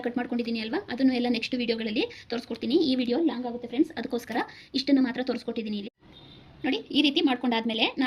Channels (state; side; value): identical; both; correlation 1.00